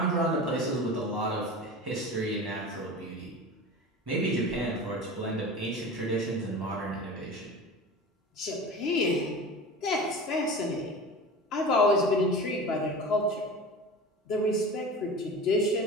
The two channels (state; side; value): normal; both; correlation 0.33